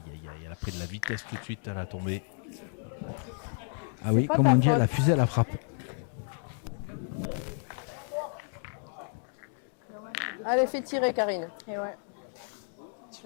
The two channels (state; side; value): silent; right; 57 dB below the other